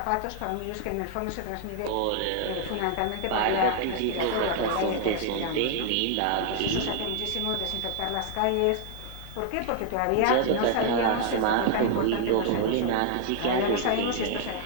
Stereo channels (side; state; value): both; different; correlation 0.00